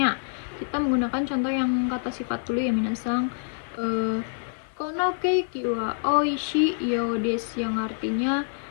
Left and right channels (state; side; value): silent; right; 61 dB below the other